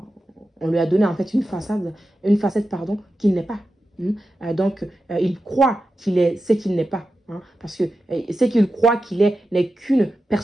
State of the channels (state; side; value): normal; both; correlation 0.91